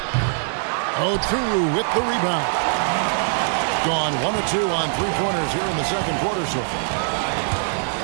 Oturu with the rebound. Gone 1 of 2 on three-pointers here in the second quarter so far.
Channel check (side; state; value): left; silent; digital silence